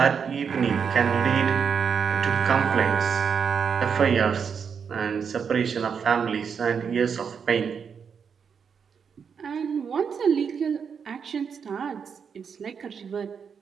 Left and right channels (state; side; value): quieter; left; 6.6 dB